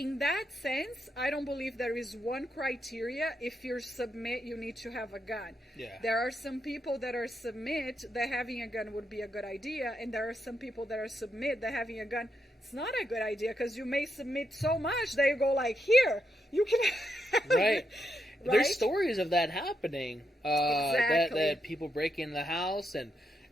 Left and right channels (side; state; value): both; normal; correlation 0.82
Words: that sense, I don't believe there is one criteria. If you submit, you need to have a gun. Yeah. There are some people that are submit that having a gun would be a good idea, and there are some people that are submit that having a gun, it's not a good idea, because you may submit so much that you go like, here, you can have Right. it. There's stories of that happening. Exactly. That people break in the house, and